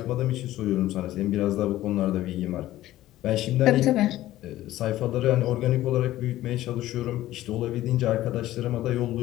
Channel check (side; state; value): right; quieter; 14.9 dB